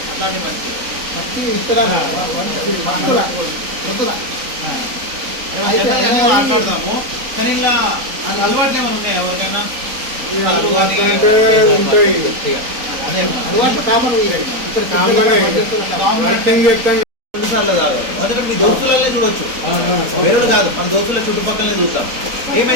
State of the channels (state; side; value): late; left; 3.9 ms